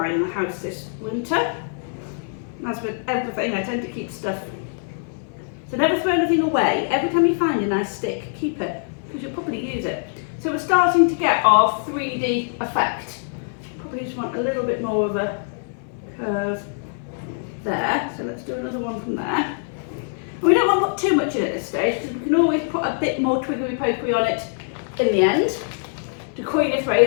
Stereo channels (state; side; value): silent; right; 60 dB below the other